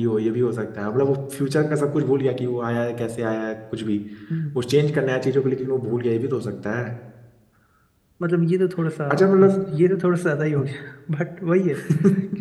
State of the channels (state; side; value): identical; both; correlation 1.00